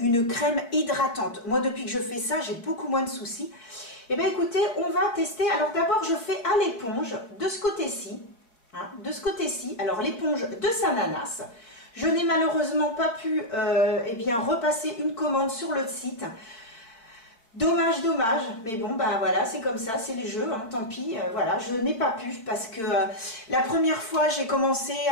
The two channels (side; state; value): right; late; 4.5 ms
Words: crème hydratante. Moi, depuis que je fais ça, j'ai beaucoup moins de soucis. Eh bien écoutez, on va tester. Alors d'abord, je fais à l'éponge de ce côté-ci. Hein, de ce côté-ci. Alors l'éponge de Sananas. Je n'ai malheureusement pas pu repasser une commande sur le site. Dommage. Mais bon, bah voilà, c'est comme ça, c'est les jeux, hein, tant pis. Voilà, je n'ai pas pu parce que la première fois, j'ai commencé